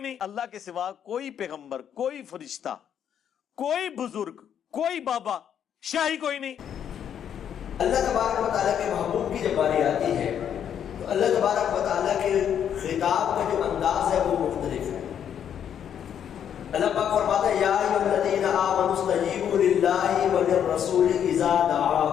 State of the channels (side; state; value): right; quieter; 9.0 dB